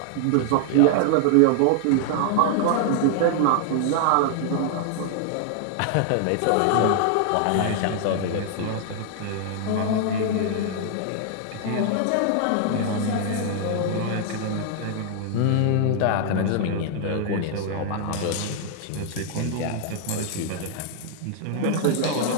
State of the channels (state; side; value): different; both; correlation 0.00